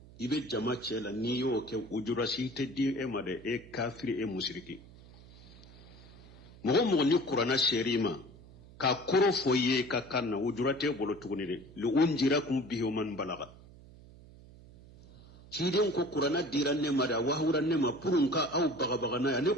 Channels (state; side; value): noise; right; hum, 21 dB below the sound